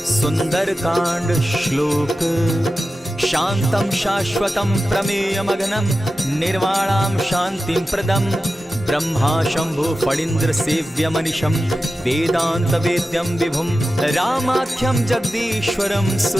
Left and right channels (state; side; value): normal; both; correlation 0.93